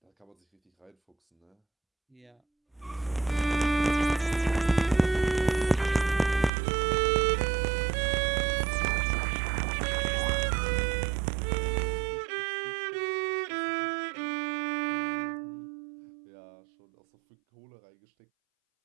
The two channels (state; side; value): drops out; left; at 6.5 s